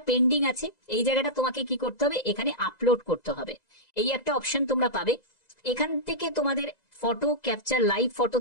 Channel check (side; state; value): right; late; 1.9 ms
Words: পেন্ডিং আছে, এই জায়গাটা তোমাকে কি করতে হবে, এখানে আপলোড করতে হবে। এই একটা অপশন তোমরা পাবে, এখান থেকে তোমাদের ফটো ক্যাপচার লাইভ ফটো